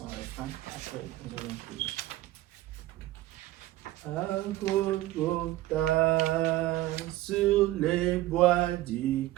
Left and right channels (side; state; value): left; quieter; 16.4 dB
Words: refrain, après nous allons prier. À Golgotha, sur les bois du